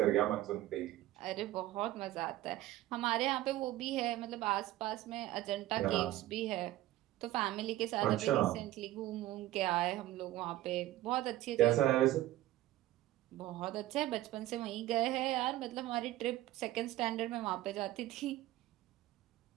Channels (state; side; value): quieter; left; 15.3 dB